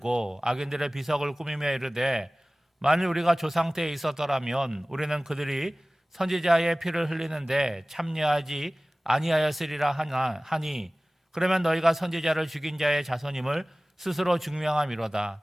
악인들의 비석을 꾸미며 이르되, 만일 우리가 조상 때에 있었더라면 우리는 그들이 선지자의 피를 흘리는데 참여하지 아니하였으리라 하니, 그러면 너희가 선지자를 죽인 자의 자손임을 스스로 증명함이로다.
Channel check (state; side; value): normal; both; correlation 0.98